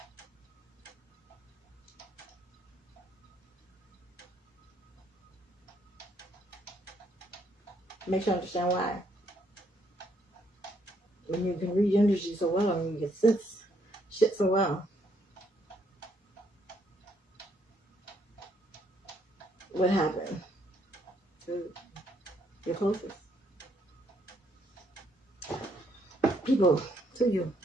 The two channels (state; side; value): normal; both; correlation 0.71